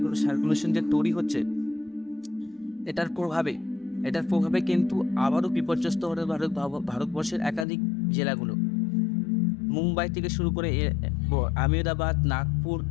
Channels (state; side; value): drops out; right; at 7.7 s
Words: সার্কুলেশন যে তৈরি হচ্ছে, এটার প্রভাবে কিন্তু আবারও বিপর্যস্ত হবে ভারতবর্ষের একাধিক জেলাগুলো। মুম্বাই থেকে শুরু করে আহমেদাবাদ, নাগপুর,